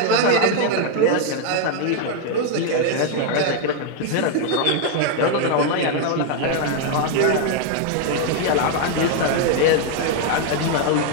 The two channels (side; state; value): both; different; correlation 0.00